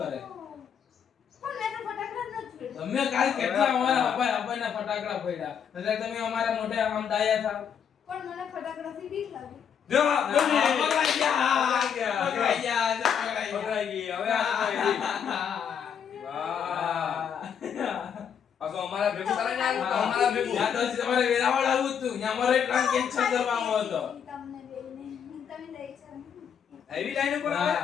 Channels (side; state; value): right; quieter; 7.8 dB